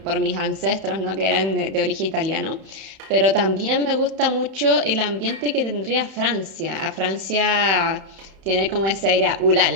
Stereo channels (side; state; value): left; late; 31 ms